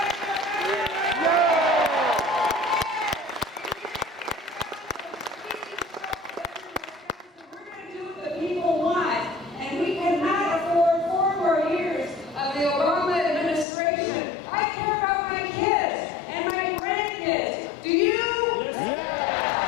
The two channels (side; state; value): right; drops out; at 13.7 s